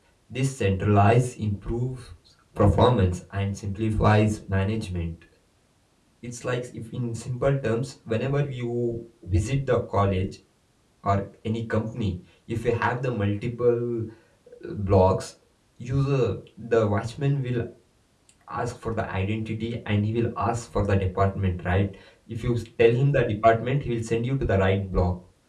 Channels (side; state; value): both; identical; correlation 1.00